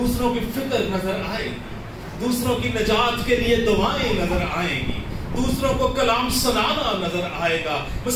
کی فکر نظر آئے گی، دوسروں کی نجات کے لیے دعائیں نظر آئیں گی، دوسروں کو کلام سنانا نظر آئے گا.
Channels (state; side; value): identical; both; correlation 1.00